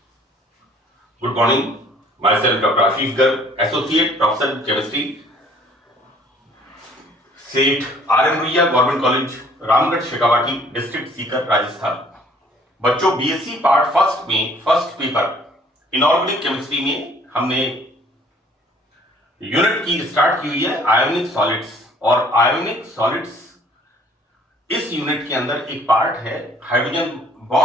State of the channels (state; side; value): normal; both; correlation 0.57